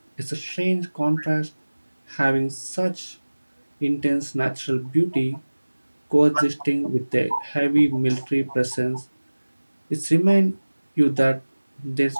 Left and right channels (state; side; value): inverted; both; correlation -1.00